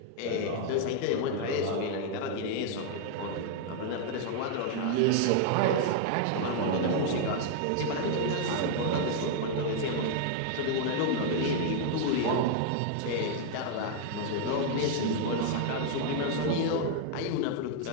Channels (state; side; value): different; both; correlation 0.00